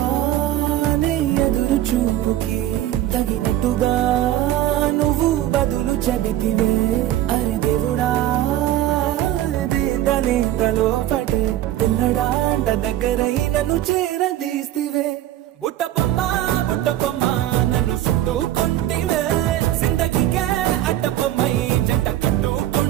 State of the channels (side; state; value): left; quieter; 13.4 dB